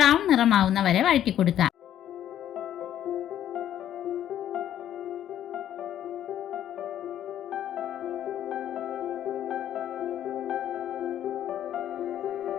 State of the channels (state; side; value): quieter; right; 11.1 dB